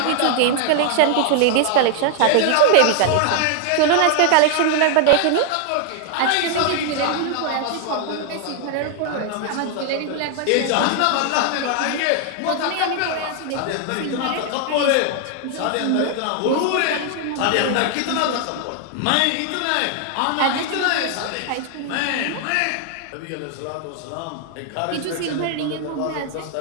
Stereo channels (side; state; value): both; different; correlation 0.00